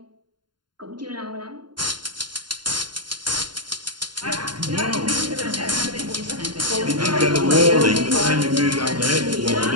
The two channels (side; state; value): left; late; 0.71 ms